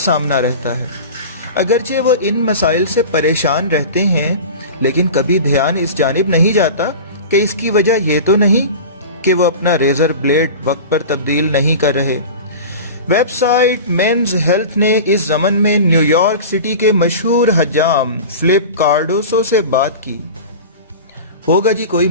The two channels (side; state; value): both; inverted; correlation -0.33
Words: رہتا ہے۔ اگرچہ وہ ان مسائل سے پریشان رہتے ہیں، لیکن کبھی دھیان اس جانب نہیں جاتا کہ اس کی وجہ یہ تو نہیں کہ وہ اپنا ریزر بلیڈ وقت پر تبدیل نہیں کر رہے۔ ویب سائٹ مینز ہیلتھ نے اس ضمن میں نیو یارک سٹی کے مشہور حجام فلپ کارڈوسو سے بات کی۔ ہوگا جی کوئی